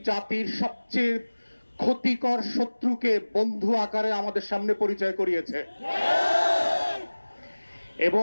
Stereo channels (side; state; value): both; inverted; correlation -1.00